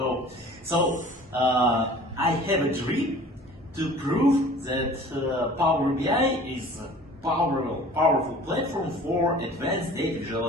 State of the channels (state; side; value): normal; both; correlation 0.46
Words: so. I have a dream to prove that Power BI is a powerful platform for advanced data